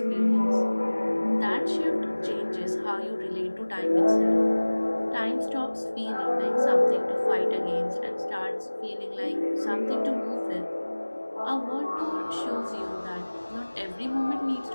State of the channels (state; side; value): inverted; both; correlation -1.00